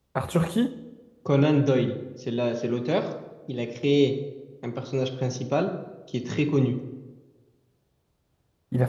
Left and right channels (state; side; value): identical; both; correlation 1.00